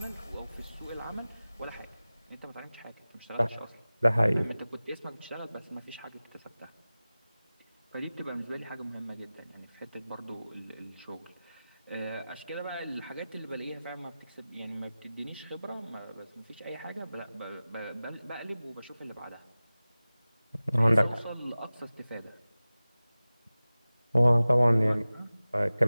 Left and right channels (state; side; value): inverted; both; correlation -0.97